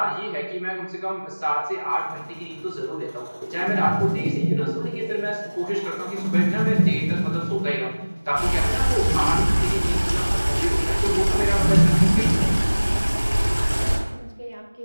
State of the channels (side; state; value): both; inverted; correlation -1.00